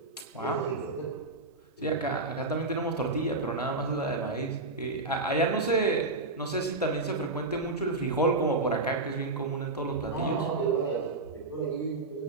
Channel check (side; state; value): left; quieter; 3.2 dB